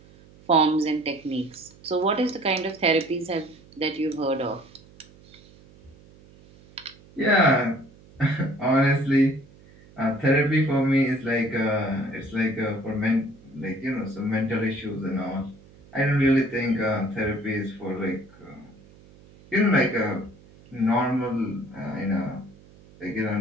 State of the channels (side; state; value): right; noise; hum, 24 dB below the sound